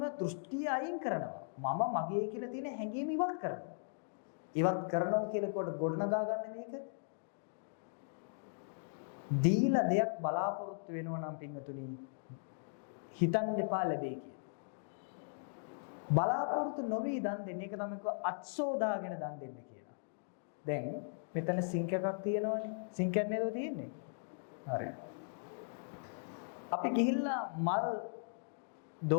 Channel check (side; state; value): right; silent; digital silence